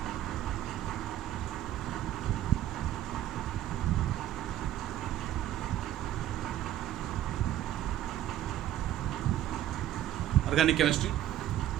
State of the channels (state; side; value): quieter; left; 12.6 dB